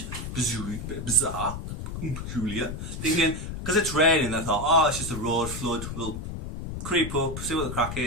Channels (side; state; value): left; noise; rumble, 7 dB below the sound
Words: bizarre, peculiar. Thinking, because it's raining, they thought, oh, it's just a road flood. We'll creep up, see what the crack